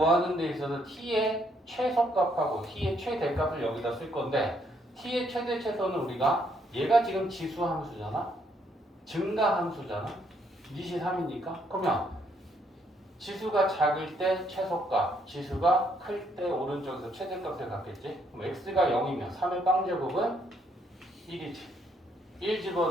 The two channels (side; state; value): both; normal; correlation 0.71